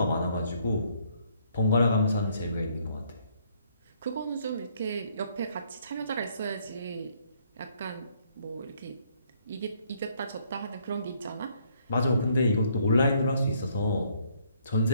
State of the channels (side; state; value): both; inverted; correlation -0.67